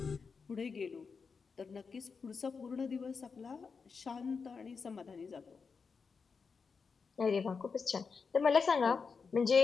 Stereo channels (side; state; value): right; quieter; 5.3 dB